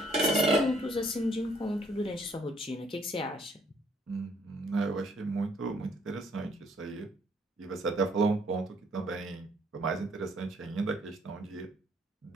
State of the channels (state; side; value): normal; both; correlation 0.65